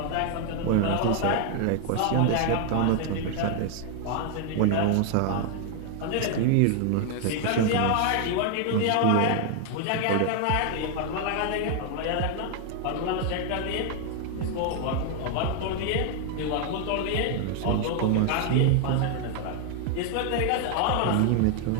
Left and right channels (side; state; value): both; different; correlation 0.00